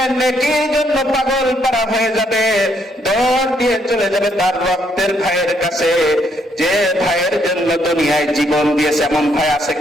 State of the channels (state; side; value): normal; both; correlation 0.72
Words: নেকির জন্য পাগল পারা হয়ে যাবে, দৌড় দিয়ে চলে যাবে তার রক্তের ভাইয়ের কাছে, যে ভাইয়ের জন্য দুনিয়ায় জীবন দিয়েছে। এমন ভাই আছে